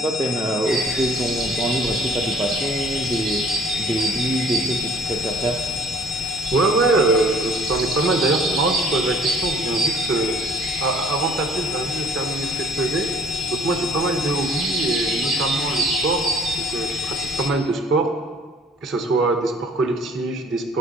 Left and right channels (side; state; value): both; normal; correlation 0.54